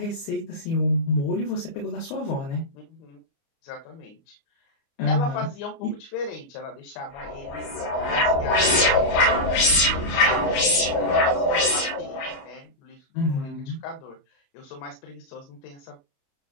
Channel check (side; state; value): right; late; 29 ms